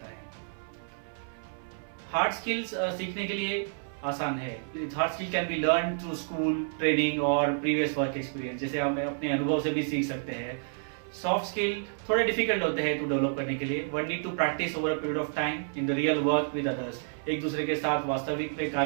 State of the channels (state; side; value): silent; left; 58 dB below the other